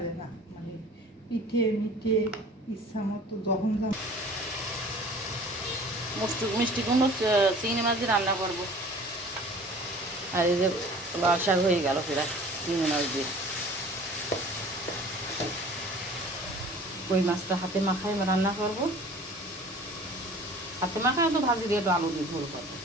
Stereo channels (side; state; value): both; normal; correlation 0.46